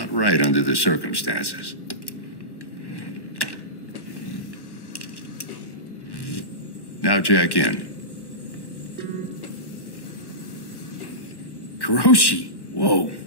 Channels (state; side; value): late; right; 1.1 ms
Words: right under the circumstances. Now jack in. Kuroshi? Whoa.